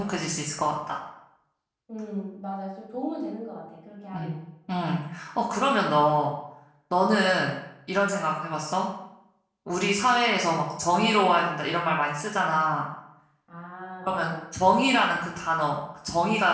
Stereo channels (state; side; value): identical; both; correlation 1.00